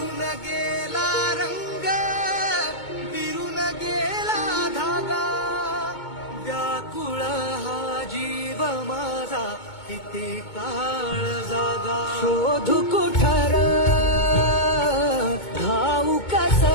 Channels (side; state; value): right; late; 2.2 ms